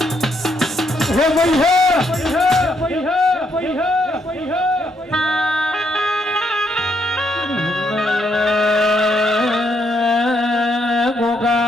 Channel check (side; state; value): both; normal; correlation 0.75